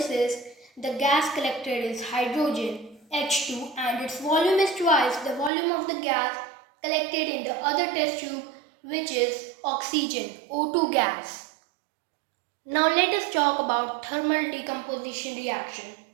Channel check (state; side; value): drops out; left; at 5.5 s